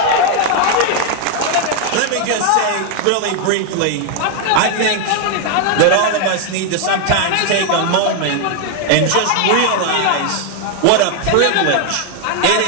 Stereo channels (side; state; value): both; different; correlation 0.00